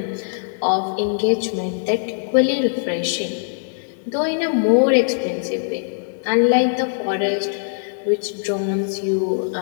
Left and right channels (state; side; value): silent; right; digital silence